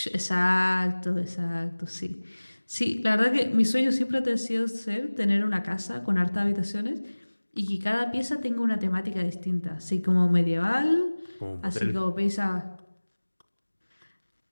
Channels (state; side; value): inverted; both; correlation -1.00